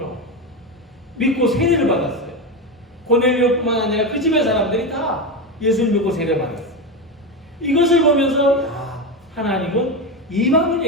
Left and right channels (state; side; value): normal; both; correlation 0.16